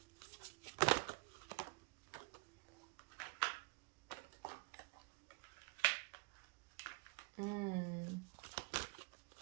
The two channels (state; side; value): quieter; left; 29.5 dB